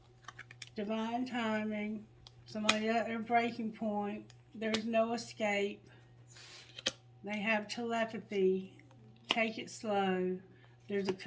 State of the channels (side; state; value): both; identical; correlation 1.00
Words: Divine timing. Somebody at their breaking point. There's no escape. They have telepathy. Take it slow. There's a